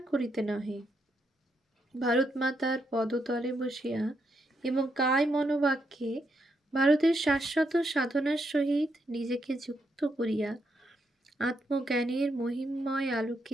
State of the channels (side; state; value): both; normal; correlation 0.79